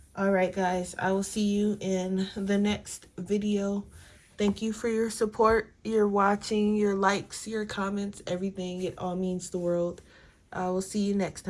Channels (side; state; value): both; identical; correlation 1.00